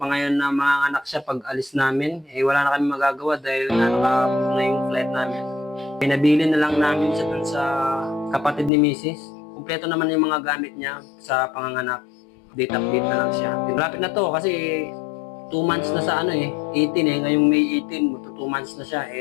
na mga anak siya pag alis namin. Eh, wala na kami magagawa dahil nakapag na yung flight namin. Pinabili na lang namin siya dun sa kapatid ni Mrs. Kumpleto naman yung mga gamit niya sa panganganak. Update na lang siya. Malapit na to kasi 2 months na sa 18 ngayong May 18, 2 months na siya.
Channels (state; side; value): drops out; right; at 8.7 s